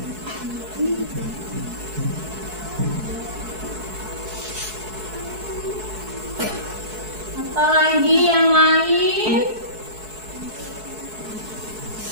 apalagi yang lain,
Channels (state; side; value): late; left; 4.6 ms